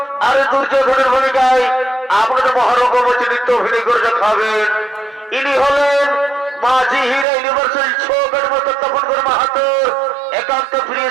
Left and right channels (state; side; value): drops out; left; at 7.2 s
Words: আর দুর্যোধনের ভূমিকায় আপনাদের মহারঙ্গমঞ্চে নৃত্য অভিনয় করে দেখাবেন। ইনি হলেন মাঝি হীরা ইউনিভার্সিটি ছোকের মতো তপনকর মাহাতোর একান্ত প্রিয়